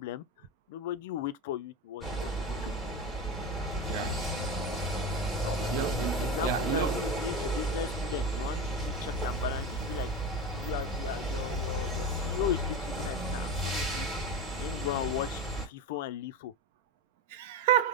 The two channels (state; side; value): normal; both; correlation 0.21